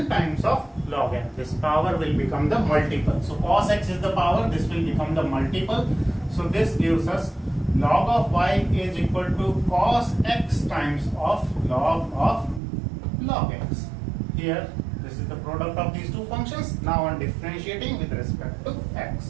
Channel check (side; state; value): left; drops out; at 12.6 s